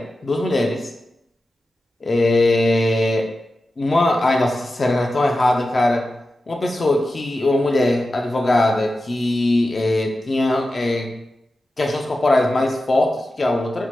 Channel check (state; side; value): normal; both; correlation 0.93